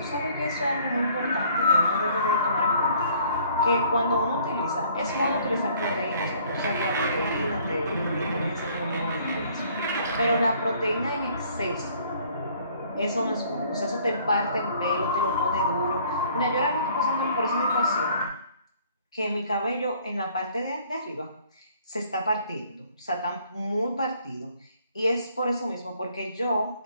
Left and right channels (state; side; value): inverted; both; correlation -0.59